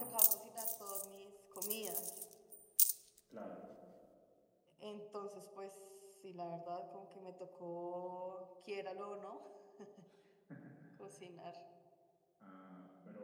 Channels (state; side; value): identical; both; correlation 1.00